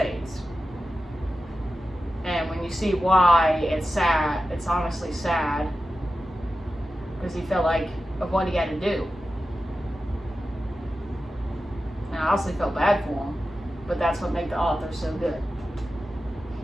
And when you see why, it's sad. It's honestly sad. Because he felt like of what he had to do. And I honestly felt bad for him. But that's what made the author so good.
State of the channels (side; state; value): both; normal; correlation 0.92